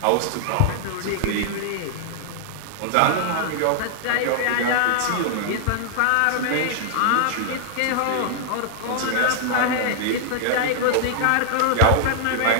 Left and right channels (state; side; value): different; both; correlation 0.00